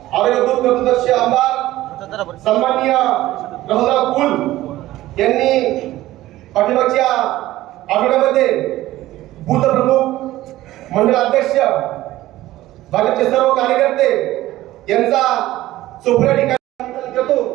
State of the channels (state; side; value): quieter; left; 15.8 dB